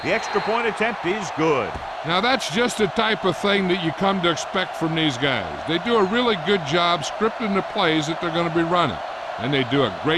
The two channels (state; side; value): identical; both; correlation 1.00